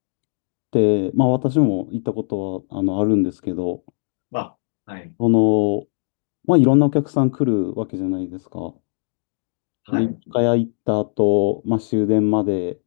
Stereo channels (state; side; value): silent; right; digital silence